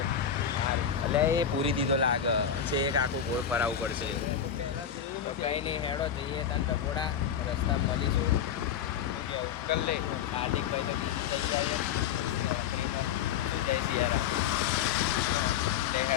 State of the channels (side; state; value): right; quieter; 8.4 dB